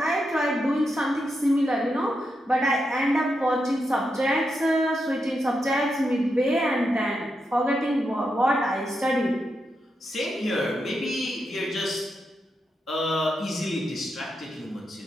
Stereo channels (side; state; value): both; normal; correlation 0.85